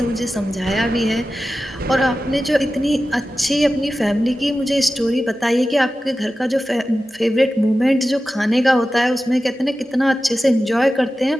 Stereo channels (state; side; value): normal; both; correlation 0.94